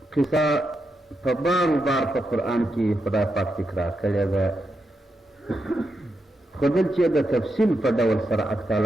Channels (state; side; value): normal; both; correlation 0.85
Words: قصه په بار بار په قرآن کې خدای پاک تکرار کړې ده، خو دلته د تفصیل په ډول سره